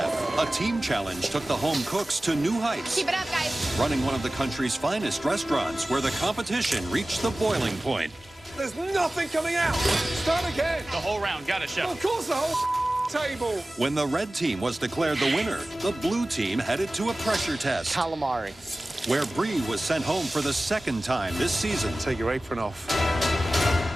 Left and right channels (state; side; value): normal; both; correlation 0.97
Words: a team challenge took the home cooks to new heights. Keep it up, guys. Running one of the country's finest restaurants where the competition reached the boiling point. There's nothing coming out. Start again. The whole round. Got it, Chef. Of course, the whole table. When the red team was declared the winner, the blue team headed to a pressure test Calamari. where Bree was sent home for the second time this season. Take your apron off.